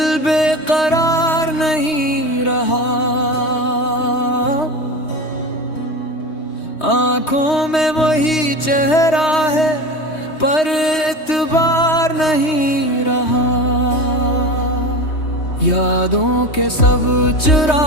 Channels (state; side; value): late; right; 3.2 ms